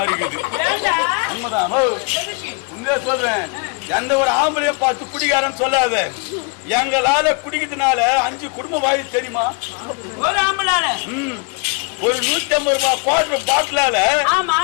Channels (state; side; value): quieter; right; 33.4 dB